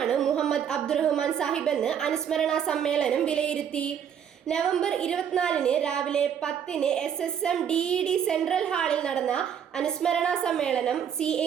മുഹമ്മദ് അബ്ദുറഹ്മാൻ സാഹിബ് എന്ന് അനുസ്മരണ സമ്മേളനം വിലയിരുത്തി. നവംബർ 24 രാവിലെ 10 SSM DED സെൻട്രൽ ഹാളിൽ നടന്ന അനുസ്മരണ സമ്മേളനം CA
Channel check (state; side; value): quieter; left; 8.5 dB